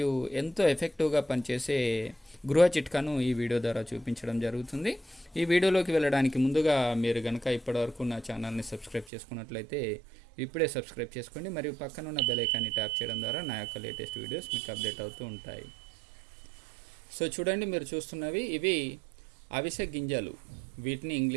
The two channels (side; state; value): left; drops out; at 9.1 s